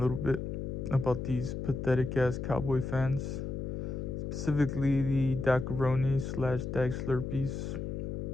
little bit about these pathetic ass Cowboy fans, specifically the Dacaroni / Dak Slurpees,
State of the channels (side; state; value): left; noise; hum, 4 dB below the sound